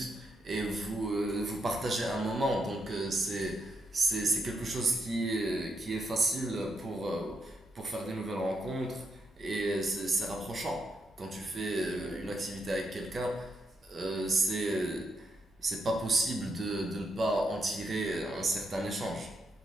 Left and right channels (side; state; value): both; normal; correlation 0.81